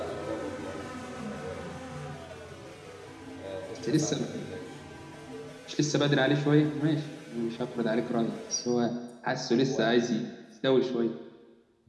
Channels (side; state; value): both; identical; correlation 1.00